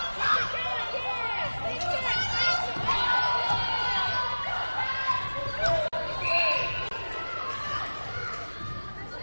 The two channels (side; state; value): both; inverted; correlation -1.00